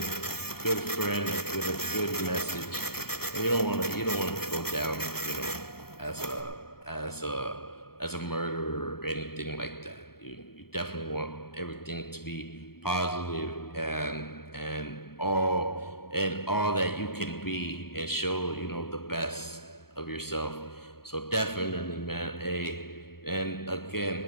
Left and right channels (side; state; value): right; late; 0.95 ms